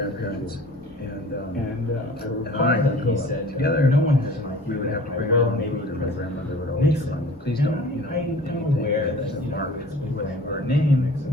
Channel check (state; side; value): normal; both; correlation 0.46